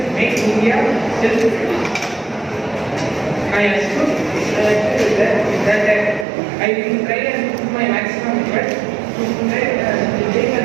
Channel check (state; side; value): drops out; left; at 6.2 s